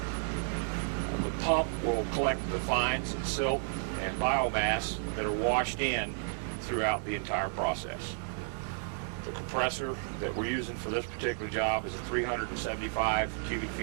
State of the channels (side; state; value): left; silent; 56 dB below the other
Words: The pump will collect the fines and silt and biomass that are washed in throughout the entire process. The compressor that we're using for this particular job is a 375 cubic